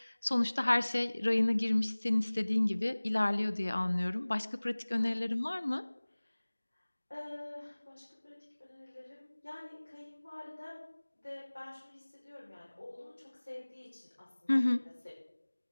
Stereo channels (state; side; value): inverted; both; correlation -1.00